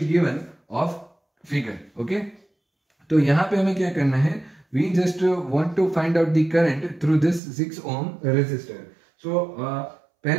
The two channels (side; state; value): left; drops out; at 7.4 s